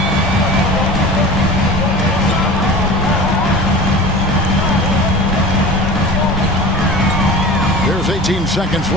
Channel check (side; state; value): both; normal; correlation 0.36